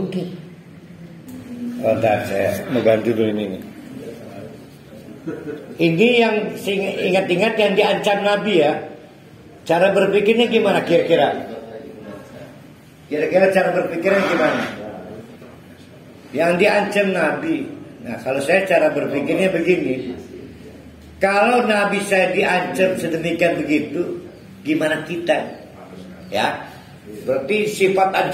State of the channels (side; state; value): both; identical; correlation 1.00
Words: Oh, saya mau ganti dulu ini. Ini yang ingat-ingat yang diancam Nabi ya. Cara berpikirnya gimana kira-kira? Kira-kira cara berpikirnya gimana? Yang diancam Nabi. Nah kalau saya cara berpikirnya begini. Kalau Nabi saya diancam sedemikian begitu, gimana kita? Ya, berarti sifat